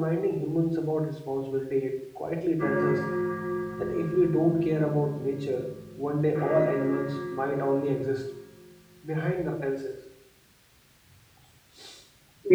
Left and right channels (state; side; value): identical; both; correlation 1.00